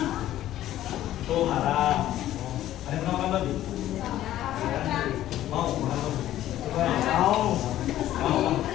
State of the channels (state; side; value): quieter; right; 13.3 dB